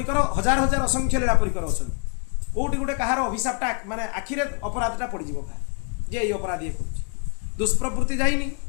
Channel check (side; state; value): right; quieter; 34.9 dB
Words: हजार हजार असंख्य लीला परिकर अच्छा कौटी गोटे कहार अभिशापटा माने आखिरे अपराधटा पड़ जाए जे ये अपराध ये कर दुष्प्रवृत्ति जाइनी